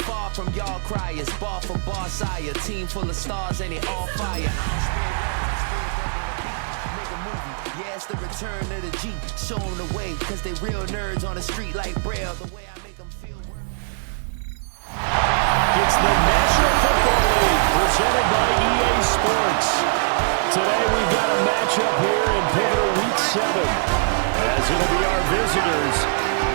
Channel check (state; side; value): silent; left; 63 dB below the other